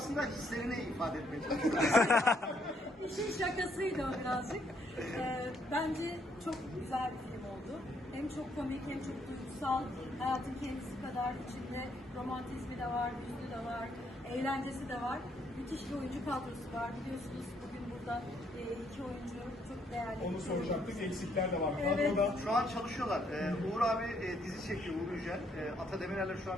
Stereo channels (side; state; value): both; normal; correlation 0.71